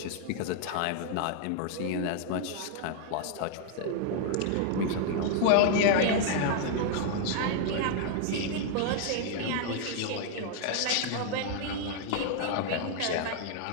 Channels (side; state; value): both; different; correlation 0.00